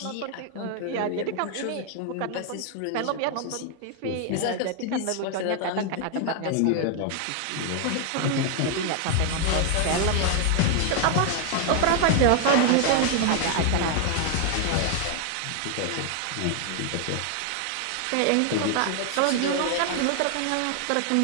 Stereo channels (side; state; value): both; different; correlation 0.00